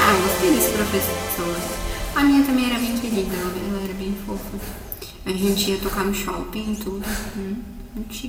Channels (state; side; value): identical; both; correlation 1.00